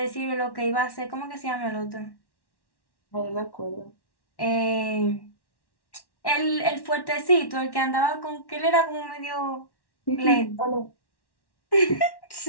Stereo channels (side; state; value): right; late; 1.1 ms